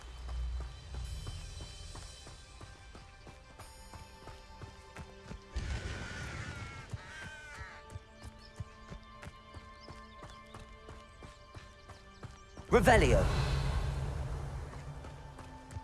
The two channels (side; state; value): both; identical; correlation 1.00